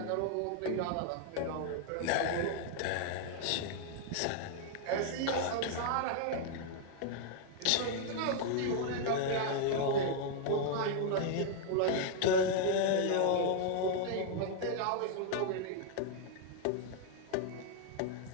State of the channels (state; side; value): different; both; correlation 0.00